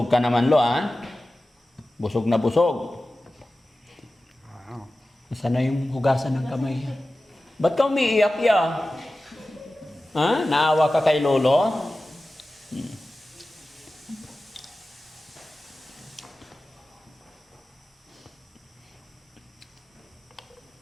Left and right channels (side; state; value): both; normal; correlation 0.95